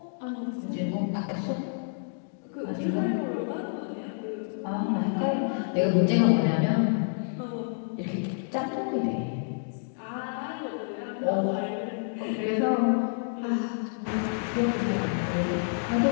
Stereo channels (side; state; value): right; silent; digital silence